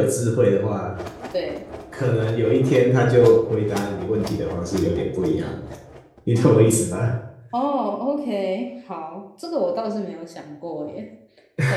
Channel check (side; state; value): both; identical; correlation 1.00